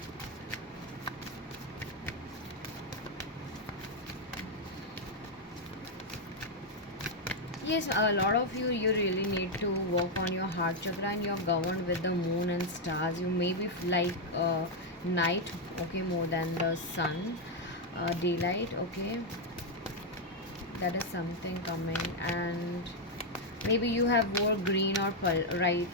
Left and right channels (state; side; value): normal; both; correlation 0.01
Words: Yes, a lot of you really need to work on your heart chakra, and you're governed with the moon and stars. You may be like night, okay, more than the sun, daylight, okay. That is something coming, and maybe you have wore green or right,